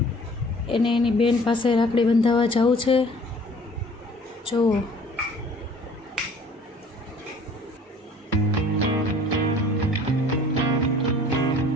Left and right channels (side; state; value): both; normal; correlation 0.51